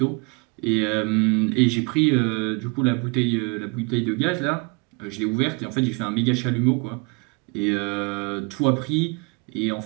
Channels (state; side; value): quieter; left; 31.4 dB